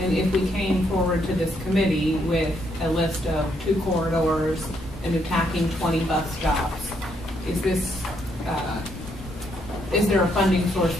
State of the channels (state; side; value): normal; both; correlation 0.74